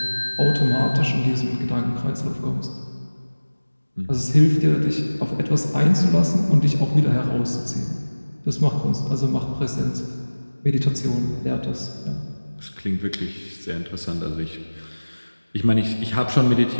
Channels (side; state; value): both; inverted; correlation -1.00